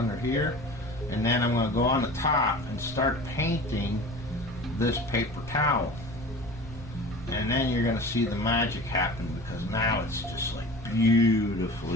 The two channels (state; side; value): normal; both; correlation 0.38